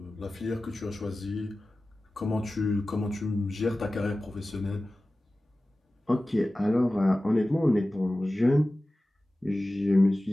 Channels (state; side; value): normal; both; correlation 0.96